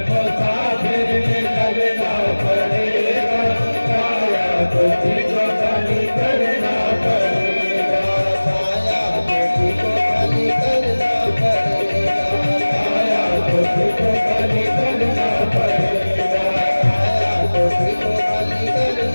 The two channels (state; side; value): inverted; both; correlation -1.00